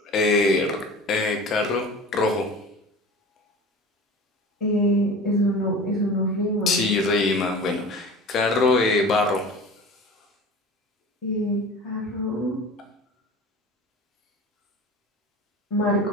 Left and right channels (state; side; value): normal; both; correlation 0.37